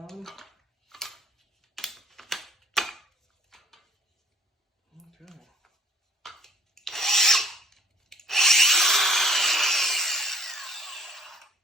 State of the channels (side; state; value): both; normal; correlation 0.57